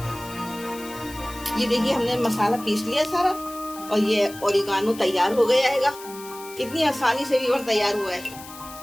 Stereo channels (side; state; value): left; noise; hiss, 16 dB below the sound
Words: ये देखिए हमने मसाला पीस लिया सारा और ये ओरिगानो तैयार हो गया है। कितनी आसानी से भी तैयार हुआ है।